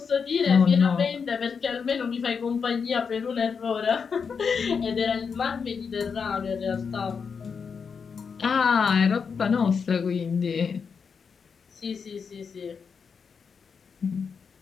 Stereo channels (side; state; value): right; quieter; 5.9 dB